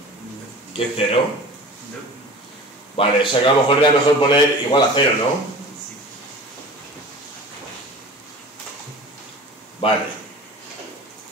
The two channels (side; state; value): both; normal; correlation 0.39